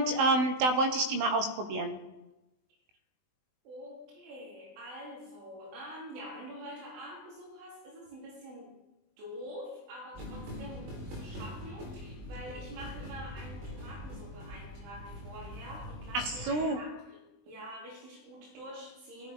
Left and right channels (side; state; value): left; late; 20 ms